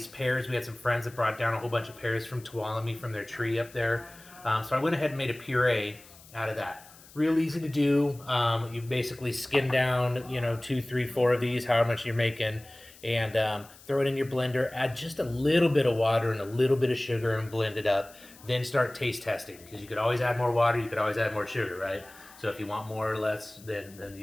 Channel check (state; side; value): noise; left; hiss, 22 dB below the sound